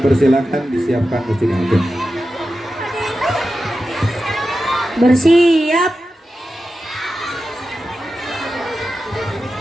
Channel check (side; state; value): both; normal; correlation 0.92